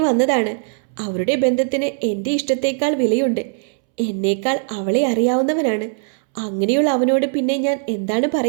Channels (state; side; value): silent; left; 66 dB below the other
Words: വന്നതാണ്. അവരുടെ ബന്ധത്തിന് എൻ്റെ ഇഷ്ടത്തേക്കാൾ വിലയുണ്ട്. എന്നേക്കാൾ അവളെ അറിയാവുന്നവനാണ്. അങ്ങനെയുള്ള അവനോട് പിന്നെ ഞാൻ എന്താണ്